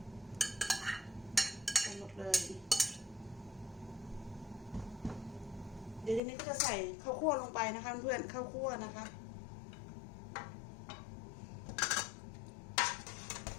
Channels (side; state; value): right; drops out; at 6.2 s